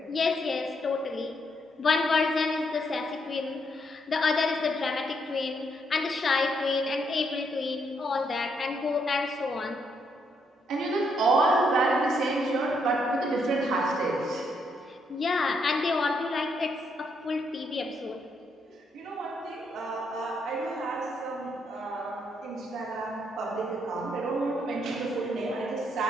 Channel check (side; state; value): both; normal; correlation 0.75